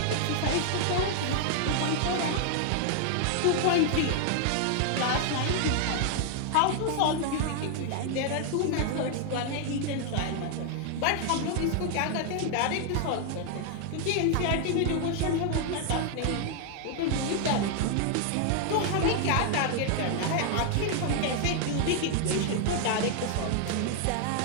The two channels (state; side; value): different; both; correlation 0.00